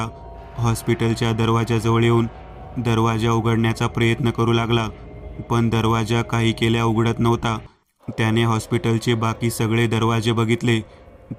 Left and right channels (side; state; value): both; identical; correlation 1.00